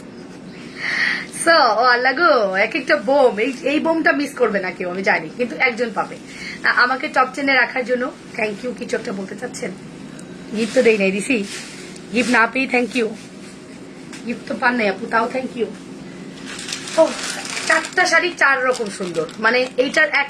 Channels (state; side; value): identical; both; correlation 1.00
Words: ও আল্লাহ গো, এক একটা বোম, এই বোমটা মিস করবে না কেউ আমি জানি, কিন্তু একজন পাবে। আমাকে টপ 10-এ রাখার জন্য থ্যাংক ইউ। কিছু একটা বলতে চাচ্ছেন? গিফট তো দেই নাই, দিছি গিফট না পেয়ে থ্যাংক ইউ। গিফট তো পান নাই আপু, তাও থ্যাংক ইউ। ও 4টা শাড়ি 4 রকম সুন্দর, মানে এইটার এক